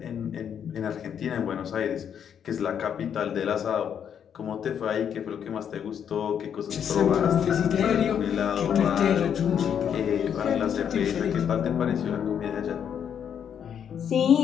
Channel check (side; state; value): right; quieter; 8.4 dB